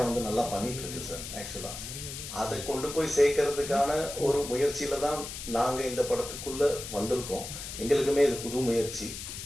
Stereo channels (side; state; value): left; noise; hiss, 9 dB below the sound